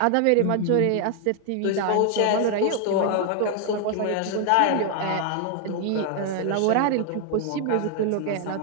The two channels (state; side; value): different; both; correlation 0.00